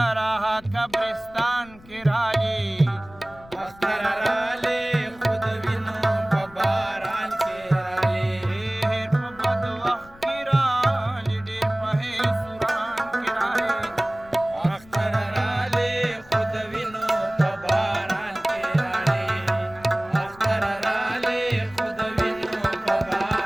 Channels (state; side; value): noise; left; rumble, 22 dB below the sound